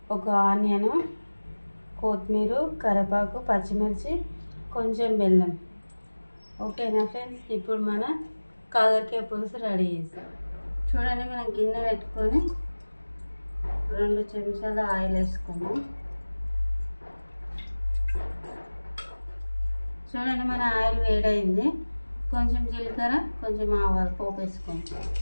ఒక ఆనియన్, కొత్తిమీర, కరివేపాకు, పచ్చిమిర్చి, కొంచెం బెల్లం. ఓకేనా ఫ్రెండ్స్, ఇప్పుడు మన కాకరకాయ పులుసు రెడీ చేస్తాం. చూడండి, మనం గిన్నె పెట్టుకొని 2 చెంచాల ఆయిల్ వేసుకున్నాం. చూడండి, మన ఆయిల్ వేడైంది. కొంచెం జీలకర్ర, కొంచెం ఆవాలు పోపు వేసుకోండి.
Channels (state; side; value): inverted; both; correlation -1.00